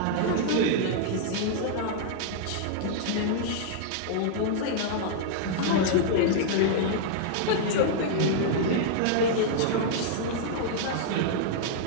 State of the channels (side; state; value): both; different; correlation -0.01